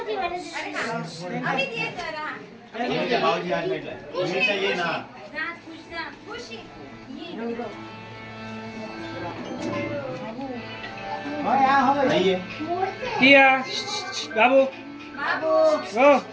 भाऊजी आज भेटलाय. उमेशा ये ना. नाहीये. बाबू हो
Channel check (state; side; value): identical; both; correlation 1.00